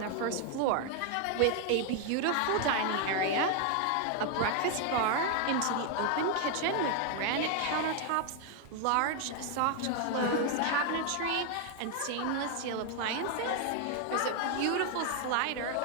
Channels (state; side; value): different; both; correlation 0.01